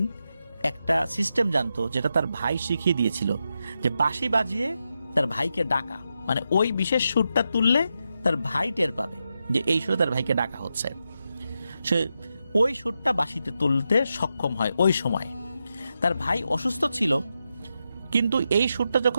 একটা সিস্টেম জানতো, যেটা তার ভাই শিখিয়ে দিয়েছিল, যে বাঁশি বাজিয়ে তার ভাইকে ডাকা, মানে ওই বিশেষ সুরটা তুললে তার ভাই টের পাবে যে এই সুরে তার ভাইকে ডাকা হচ্ছে। সে ওই সুরটা বাঁশিতে তুলতে সক্ষম হয়। ওই সময় তার ভাই অসুস্থ ছিল, কিন্তু এই সুরটা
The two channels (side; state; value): both; inverted; correlation -0.86